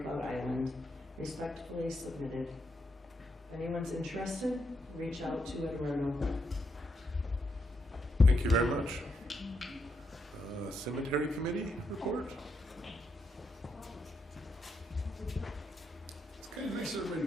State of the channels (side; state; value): both; normal; correlation 0.80